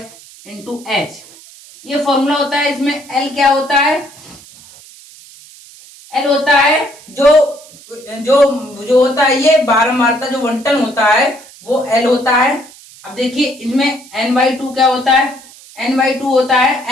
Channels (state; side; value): noise; right; hiss, 22 dB below the sound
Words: into h, ये फॉर्मूला होता है। इसमें L क्या होता है, L होता है जो होता है ये बारंबारता जो बंटन होता है वो L होता है। अब देखिए इसमें n/2 क्या होता है, n/2 होता